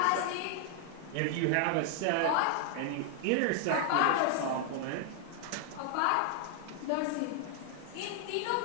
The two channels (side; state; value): both; different; correlation 0.00